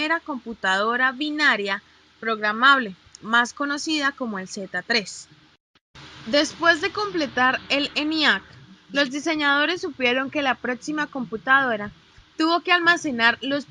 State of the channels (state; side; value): identical; both; correlation 1.00